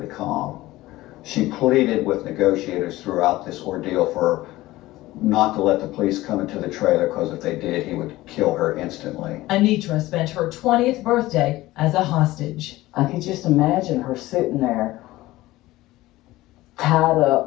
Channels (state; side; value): quieter; right; 17.6 dB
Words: calm. She pleaded with negotiators throughout this ordeal for not to let the police come into the trailer, because if they did, he would kill her instantly. Anitra spent her 20th birthday as a hostage. I could just imagine her sitting there, tied